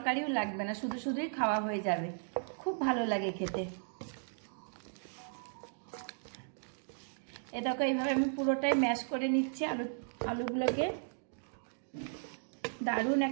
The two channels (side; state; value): left; silent; digital silence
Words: লাগবে না, শুধু শুধুই খাওয়া হয়ে যাবে। খুব ভালো লাগে খেতে। এটাকে এইভাবে আমি পুরোটাই ম্যাশ করে নিচ্ছি আলুগুলোকে। দারুণ